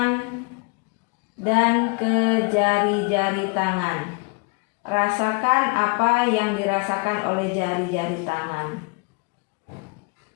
dan ke jari-jari tangan. Rasakan apa yang dirasakan oleh jari-jari tangan.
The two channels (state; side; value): quieter; right; 32.8 dB